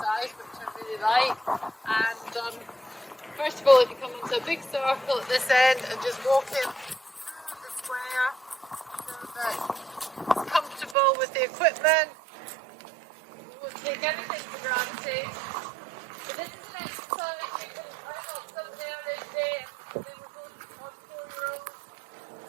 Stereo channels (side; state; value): left; drops out; at 11.0 s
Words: which I really like. And first of all, if you come into a big circle at this end and just walk in through the square so that it's comfortable with the equipment. We won't take anything for granted. But this is an exercise you can learn on some early day. They were both on 4-year-olds.